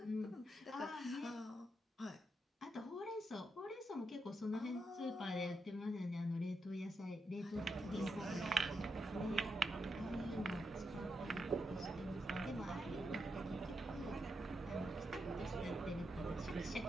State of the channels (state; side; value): normal; both; correlation 0.83